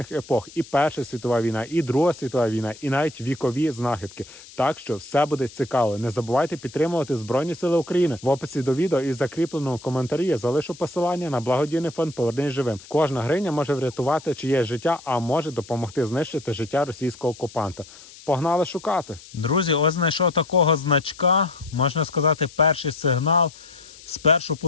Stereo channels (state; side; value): noise; left; hiss, 20 dB below the sound